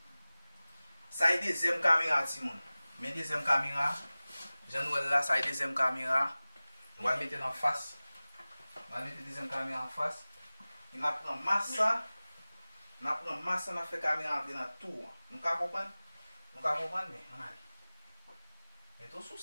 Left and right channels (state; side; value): inverted; both; correlation -0.98